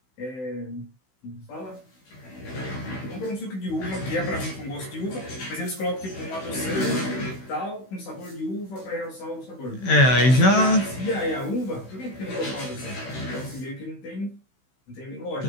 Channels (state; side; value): late; right; 16 ms